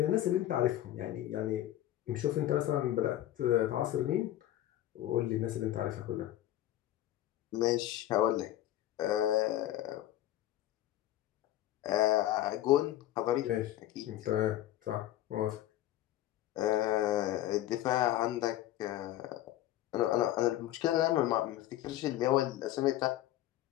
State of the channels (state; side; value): quieter; right; 13.6 dB